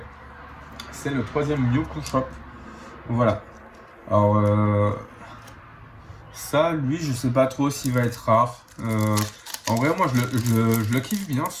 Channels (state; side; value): identical; both; correlation 1.00